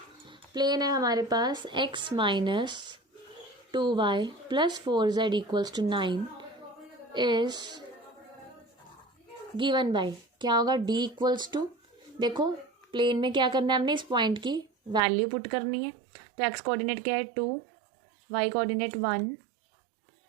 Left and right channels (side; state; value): left; drops out; at 15.0 s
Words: है हमारे पास x minus 2y plus 4z equals to 9 is given by क्या होगा, d इक्वल्स टू, देखो प्लेन में क्या करना है हमने, इस पॉइंट की वैल्यू पुट करनी है। तो x कोऑर्डिनेट क्या है 2, y कोऑर्डिनेट 1,